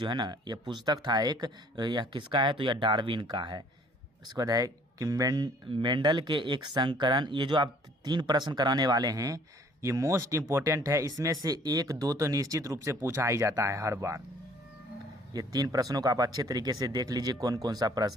है ना यह पुस्तक था एक, यह किसका है, तो यह डार्विन का है। उसके बाद है कि मेंडल के एक संकरण, ये जो आप 3 प्रश्न कराने वाले हैं ये मोस्ट इंपॉर्टेंट है, इसमें से 1-2 तो निश्चित रूप से पूछा ही जाता है हर बार। ये 3 प्रश्नों को आप अच्छे तरीके से देख लीजिए कौन कौन सा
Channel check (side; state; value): both; normal; correlation 0.57